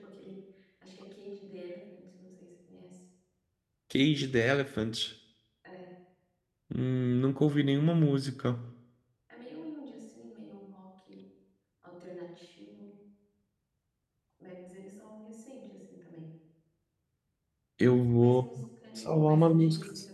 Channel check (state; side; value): identical; both; correlation 1.00